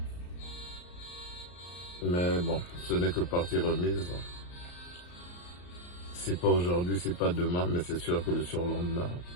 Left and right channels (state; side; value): late; right; 34 ms